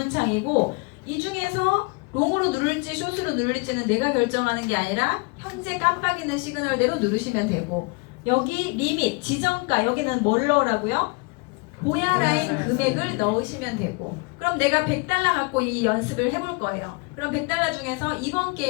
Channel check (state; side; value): quieter; right; 29.2 dB